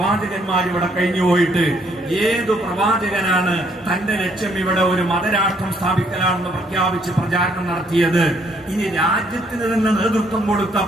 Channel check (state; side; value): normal; both; correlation 0.68